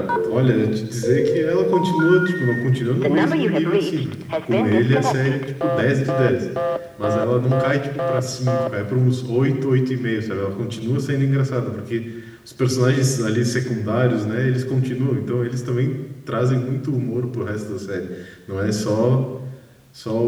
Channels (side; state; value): both; identical; correlation 1.00